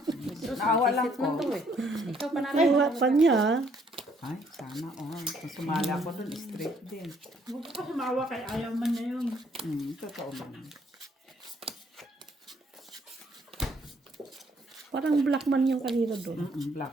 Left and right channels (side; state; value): both; normal; correlation 0.66